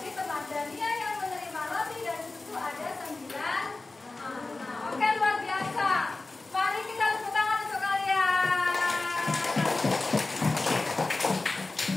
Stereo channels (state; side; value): quieter; right; 3.3 dB